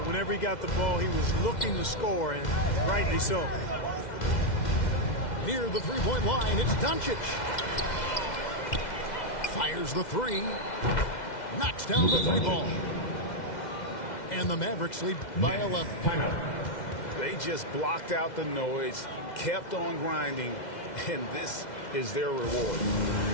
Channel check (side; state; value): right; late; 2.1 ms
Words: Whenever he got the ball, he was looking to score, and rightly so. Near the three-point line, it's Doncic. Fires the three. Knocks down the three ball. And the Mavericks lead by 11. They just blocked out the noise, kept on grinding, and this is their reward.